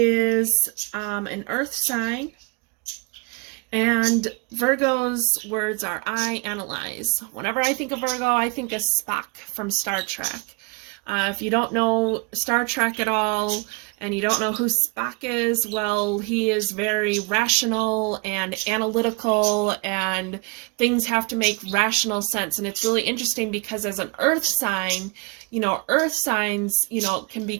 an earth sign. And Virgo's words are, I analyze. Whenever I think of Virgo, I think of Spock from Star Trek. If you don't know Star Trek at all, and you don't know who Spock is, well, he is very rational and analytical, and things have to make rational sense. And it's really interesting because as an earth sign, earth signs,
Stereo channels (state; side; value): quieter; left; 30.0 dB